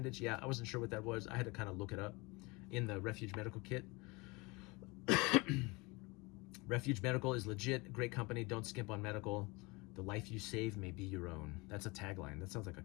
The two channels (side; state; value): right; quieter; 25.6 dB